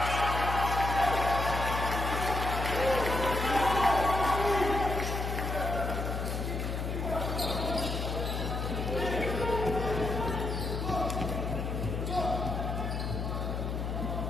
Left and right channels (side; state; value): left; noise; hum, 2 dB below the sound